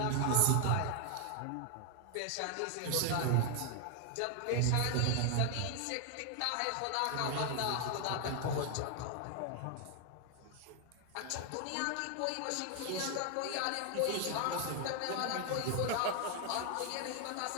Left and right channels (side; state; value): both; different; correlation 0.00